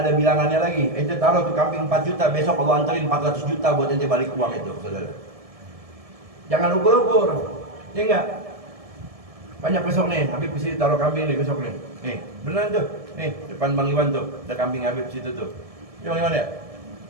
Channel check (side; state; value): left; late; 1.7 ms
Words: bilangannya lagi. Ente taruh tuh kambing 4 juta, besok Allah anterin 400 juta buat ente balik uang itu, saudara. Jangan ukur-ukur. Ya enggak? Banyak besok nih, Habib mesti taruh kambing nih besok nih. Nih, beneran tuh. Nih, depan Bang Iwan tuh, ada kambing Habib situ tuh. Bang Iwan ya?